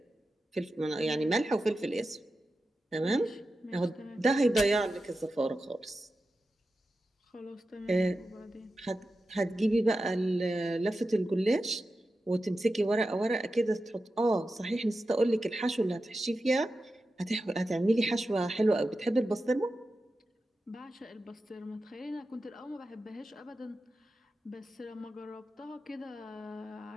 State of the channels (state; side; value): normal; both; correlation 0.92